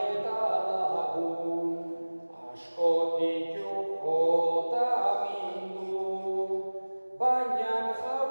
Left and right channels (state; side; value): inverted; both; correlation -1.00